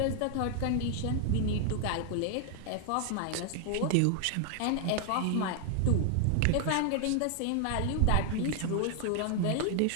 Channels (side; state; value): both; different; correlation 0.00